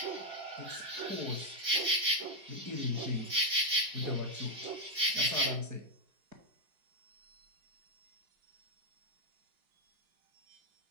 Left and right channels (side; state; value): left; late; 5.1 ms